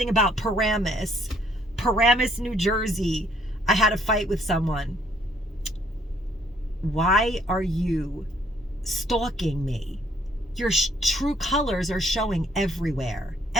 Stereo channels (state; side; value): normal; both; correlation 0.66